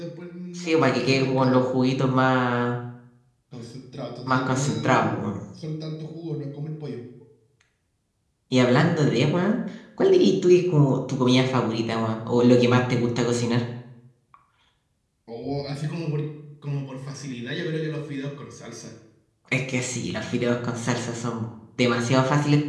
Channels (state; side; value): identical; both; correlation 1.00